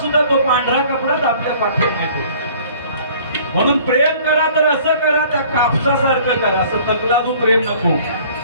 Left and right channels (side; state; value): both; inverted; correlation -0.52